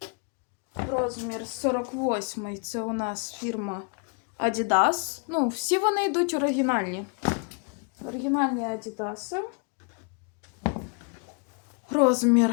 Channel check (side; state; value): right; quieter; 37.5 dB